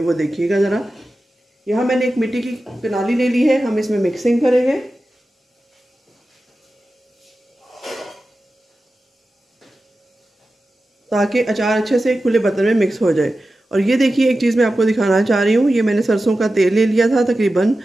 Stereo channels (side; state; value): both; normal; correlation 0.93